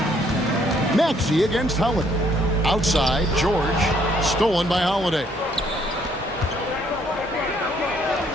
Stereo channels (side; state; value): both; normal; correlation 0.67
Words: Maxey against Holiday. Outside, George. Stolen by Holiday.